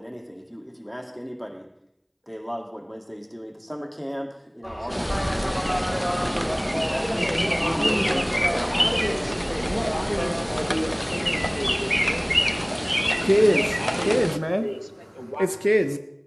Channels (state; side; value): identical; both; correlation 1.00